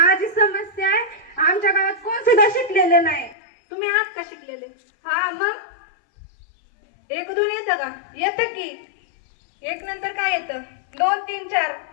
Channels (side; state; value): right; drops out; at 3.4 s